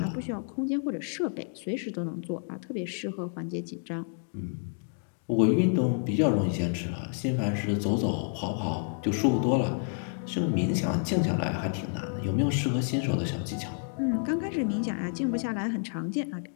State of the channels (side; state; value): right; silent; 58 dB below the other